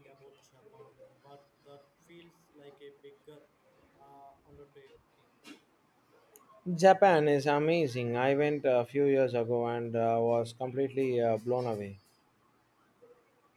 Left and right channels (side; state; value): both; identical; correlation 1.00